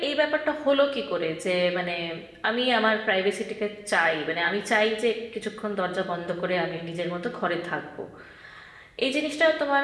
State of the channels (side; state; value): both; identical; correlation 1.00